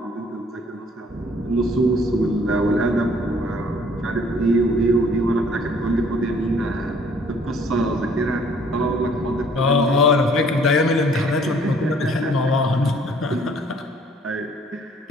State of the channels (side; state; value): both; normal; correlation 0.58